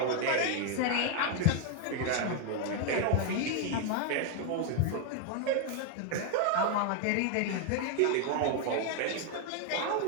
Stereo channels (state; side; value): different; both; correlation 0.01